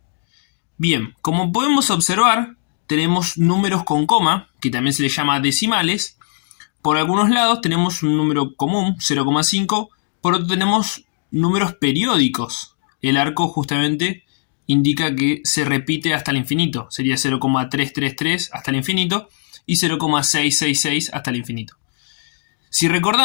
Bien, como podemos observar, tenemos números con coma, que también se les llama decimales. Por algunos lados tenemos un número común, 0,5. Por otro tenemos números periódicos. El arco justamente indica que se repite hasta el infinito. Sería 0,333 hasta el infinito y 0,666 hasta el infinito. Si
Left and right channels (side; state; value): right; silent; digital silence